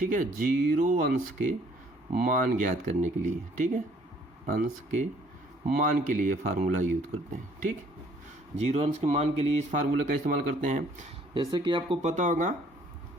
है, जीरो अंश के मान ज्ञात करने के लिए, ठीक है, अंश के मान के लिए फार्मूला यूज करते हैं। ठीक, जीरो अंश के मान के लिए इस फार्मूले का इस्तेमाल करते हैं। जैसे कि आपको पता होगा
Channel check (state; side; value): normal; both; correlation 0.61